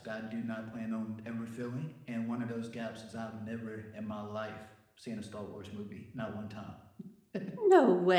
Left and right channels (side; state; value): both; identical; correlation 1.00